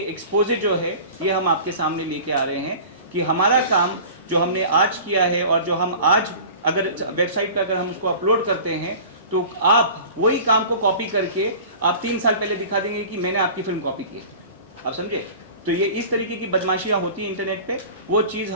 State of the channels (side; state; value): both; inverted; correlation -0.40